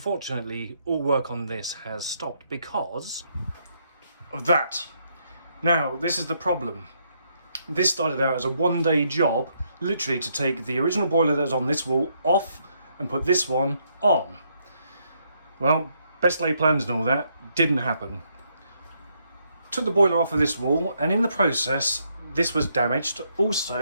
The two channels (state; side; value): inverted; both; correlation -0.75